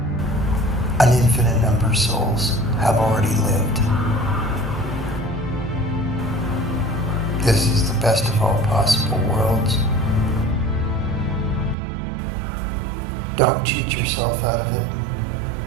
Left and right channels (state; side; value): drops out; left; at 11.8 s